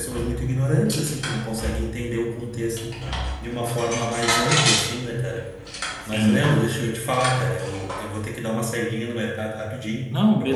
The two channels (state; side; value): identical; both; correlation 1.00